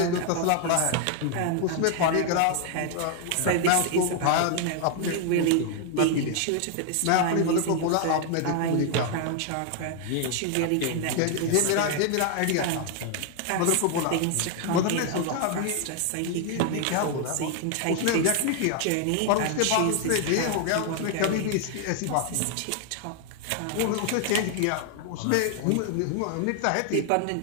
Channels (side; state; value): both; different; correlation 0.00